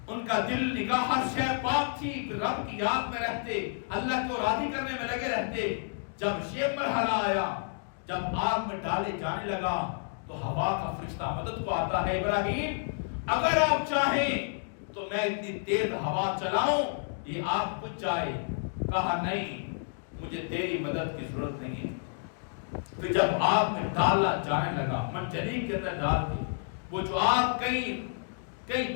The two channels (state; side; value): silent; right; digital silence